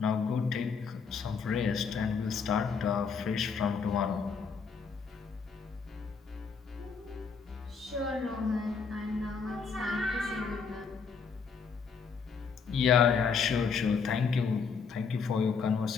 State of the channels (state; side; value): quieter; right; 5.7 dB